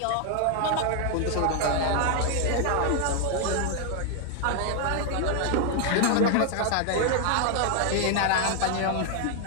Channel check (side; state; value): both; different; correlation 0.00